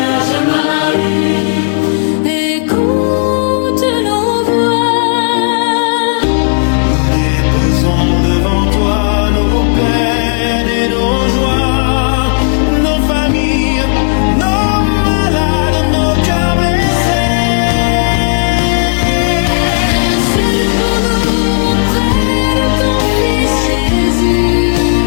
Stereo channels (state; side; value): silent; right; digital silence